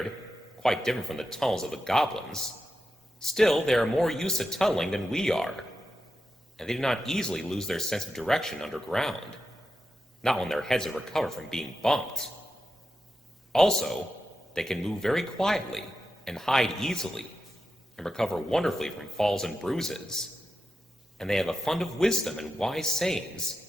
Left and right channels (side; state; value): both; normal; correlation 0.89